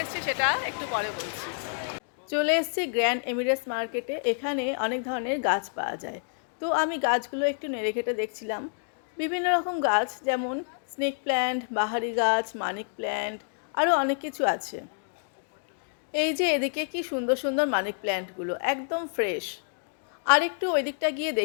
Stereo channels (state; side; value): silent; right; digital silence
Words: এসেছি সেটা একটু পরে বলছি। চলে এসেছি গ্র্যান্ড এমিরেটস মার্কেটে। এখানে অনেক ধরনের গাছ পাওয়া যায়। তো আমি গাছগুলো একটু নেড়ে ঘেটে দেখছিলাম। বিভিন্ন রকম গাছ, যেমন স্নেক প্ল্যান্ট, বাহারি গাছ, মানিক প্ল্যান্ট, আরও অনেক কিছু আছে। এই যে এদিকে কি সুন্দর সুন্দর মানি প্ল্যান্টগুলো, একদম ফ্রেশ। আর একটু ওই দিকটা গিয়ে